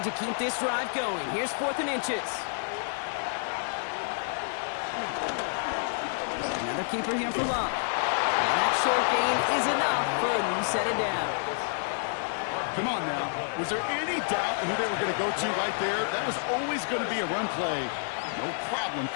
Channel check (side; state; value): right; silent; digital silence